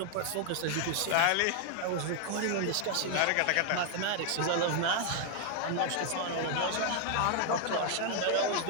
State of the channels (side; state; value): both; different; correlation 0.00